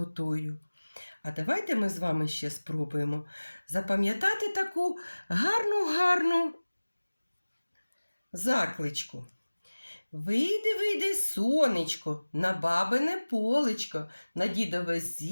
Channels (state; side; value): inverted; both; correlation -1.00